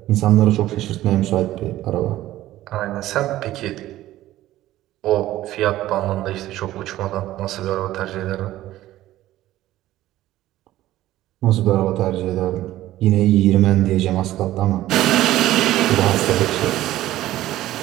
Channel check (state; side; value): quieter; left; 14.8 dB